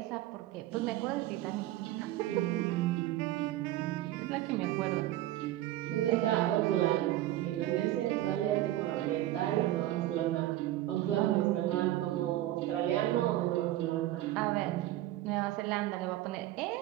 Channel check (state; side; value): quieter; left; 14.9 dB